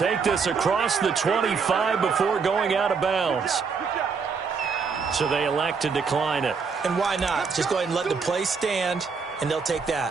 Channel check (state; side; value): quieter; left; 5.4 dB